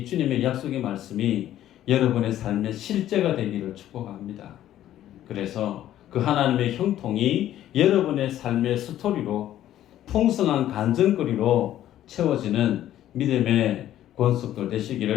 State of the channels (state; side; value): quieter; right; 12.4 dB